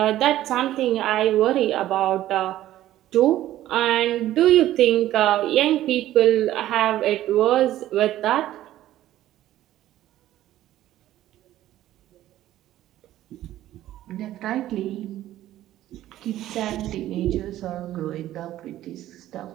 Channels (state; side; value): quieter; left; 13.8 dB